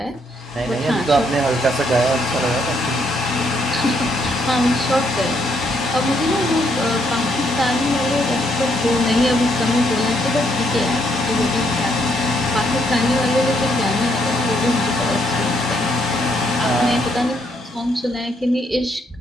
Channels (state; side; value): normal; both; correlation 0.73